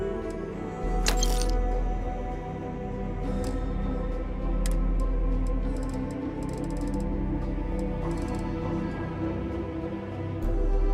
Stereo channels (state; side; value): identical; both; correlation 1.00